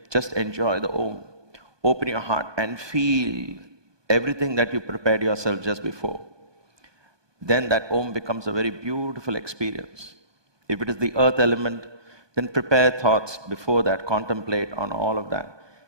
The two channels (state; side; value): late; left; 1.2 ms